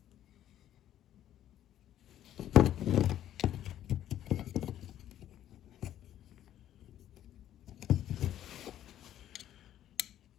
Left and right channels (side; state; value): right; quieter; 11.7 dB